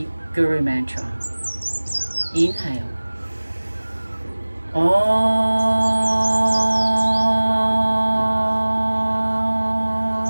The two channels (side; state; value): both; inverted; correlation -1.00